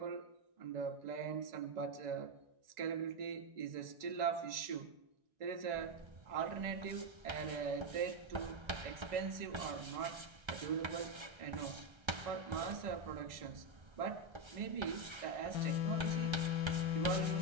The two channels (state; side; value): late; left; 1.3 ms